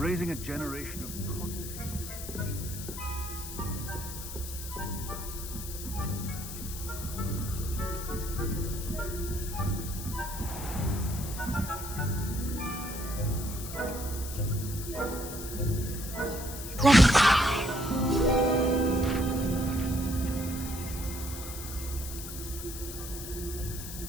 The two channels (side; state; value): left; noise; hiss, 9 dB below the sound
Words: a generation of... Let me try.